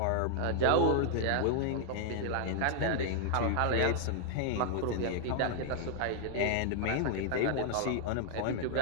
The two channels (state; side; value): different; both; correlation 0.00